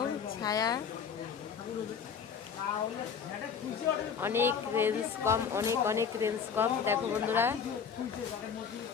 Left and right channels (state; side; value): quieter; right; 6.8 dB